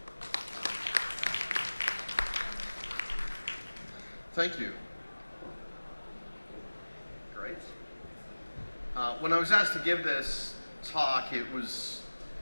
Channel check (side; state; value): both; inverted; correlation -1.00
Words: Thank you. Great. When I was asked to give this talk, it was